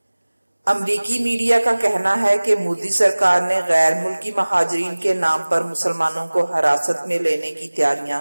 امریکی میڈیا کا کہنا ہے کہ مودی سرکار نے غیر ملکی مہاجرین کے نام پر مسلمانوں کو حراست میں لینے کی تیاریاں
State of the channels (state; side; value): inverted; both; correlation -1.00